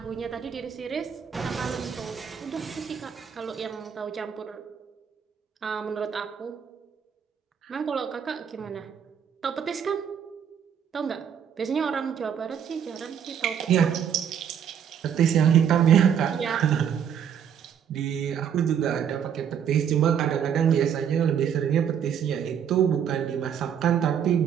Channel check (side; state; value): left; quieter; 8.3 dB